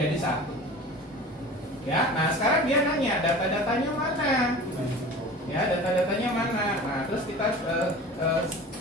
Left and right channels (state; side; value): normal; both; correlation 0.38